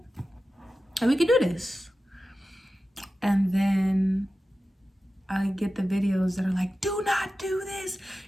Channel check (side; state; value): both; normal; correlation 0.94